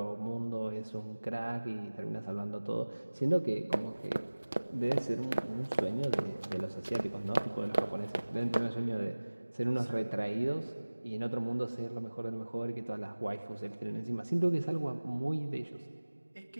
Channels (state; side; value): inverted; both; correlation -1.00